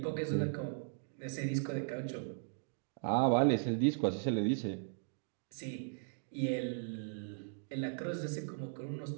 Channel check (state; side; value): silent; left; digital silence